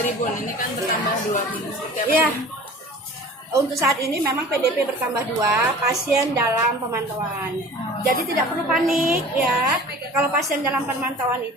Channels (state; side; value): normal; both; correlation 0.42